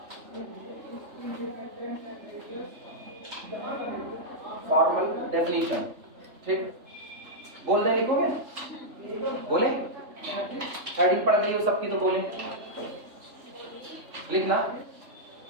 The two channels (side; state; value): left; late; 3.4 ms